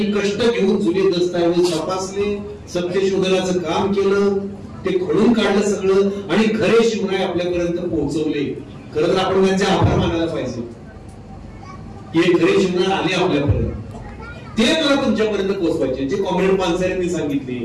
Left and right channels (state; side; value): identical; both; correlation 1.00